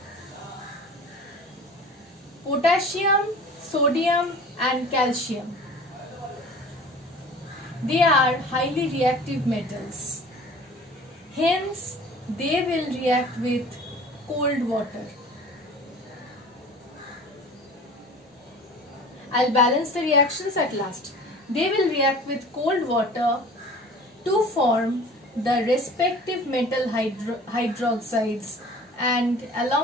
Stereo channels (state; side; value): normal; both; correlation 0.43